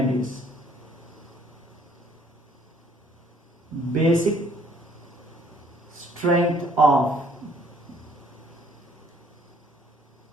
is basic strength of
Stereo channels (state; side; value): normal; both; correlation 0.62